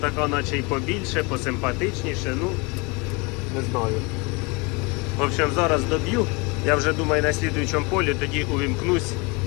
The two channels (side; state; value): right; quieter; 28.2 dB